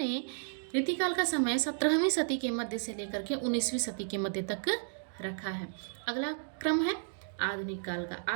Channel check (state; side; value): silent; left; digital silence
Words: रीतिकाल का समय 17वीं सदी के मध्य से लेकर के 19वीं सदी के मध्य तक रखा है। अगला क्रम है आधुनिक काल का।